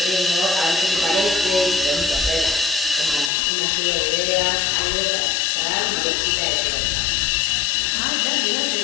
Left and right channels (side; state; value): right; drops out; at 3.3 s